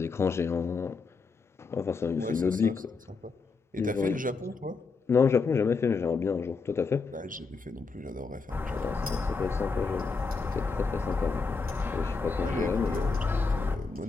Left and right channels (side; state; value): right; quieter; 4.5 dB